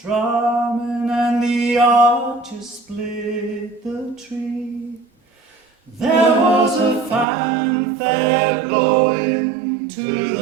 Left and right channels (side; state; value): left; drops out; at 7.2 s